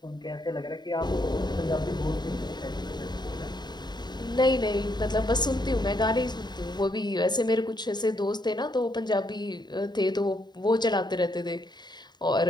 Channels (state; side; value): late; right; 0.21 ms